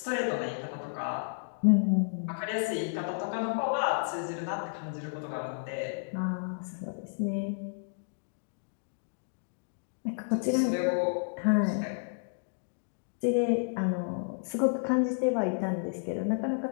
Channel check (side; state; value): right; silent; digital silence